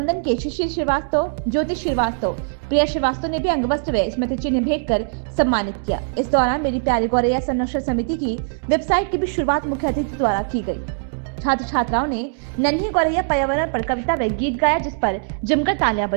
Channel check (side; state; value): left; silent; 64 dB below the other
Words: के शिशिर श्रीवास्तव, ज्योति श्रीवास्तव, प्रिया श्रीवास्तव ने भी अंगवस्त्र व स्मृति चिन्ह भेंट कर सम्मानित किया। इस दौरान मेरी प्यारी गौरैया संरक्षण समिति की वेबसाइट की भी शुरुआत मुख्य अतिथि द्वारा की गई। छात्र छात्राओं ने नन्ही गौरैया पर्यावरण पर कविता व गीत गाया, जिस पर जमकर तालियां